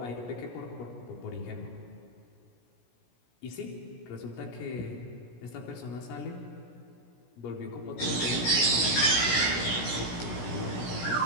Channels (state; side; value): late; right; 17 ms